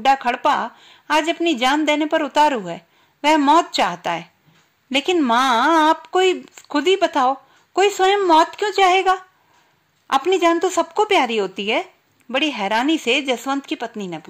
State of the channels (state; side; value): identical; both; correlation 1.00